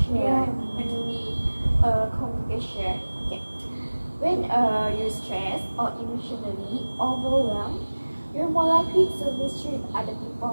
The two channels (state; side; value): inverted; both; correlation -1.00